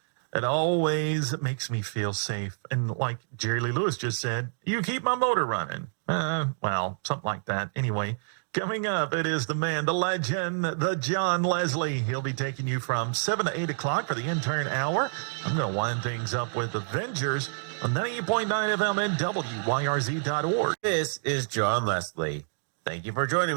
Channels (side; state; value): left; silent; digital silence